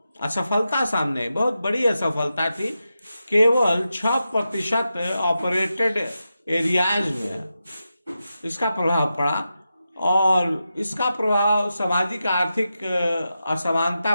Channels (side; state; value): both; inverted; correlation -0.89